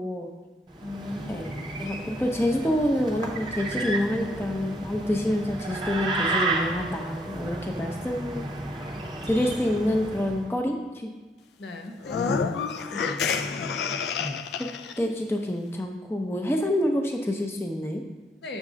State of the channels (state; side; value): normal; both; correlation 0.72